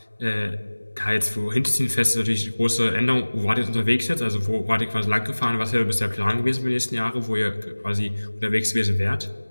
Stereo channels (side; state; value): both; inverted; correlation -1.00